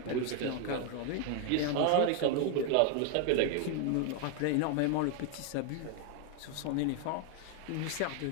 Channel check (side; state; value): both; different; correlation 0.00